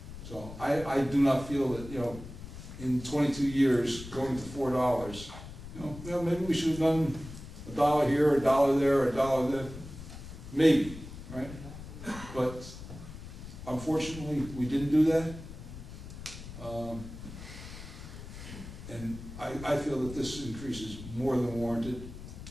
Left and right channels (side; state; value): left; noise; rumble, 12 dB below the sound